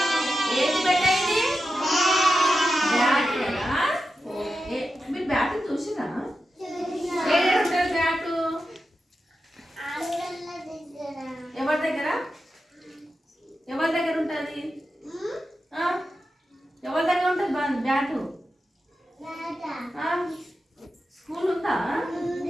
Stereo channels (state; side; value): normal; both; correlation 0.90